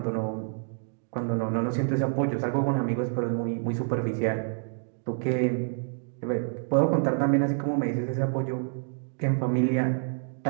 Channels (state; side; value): silent; left; 59 dB below the other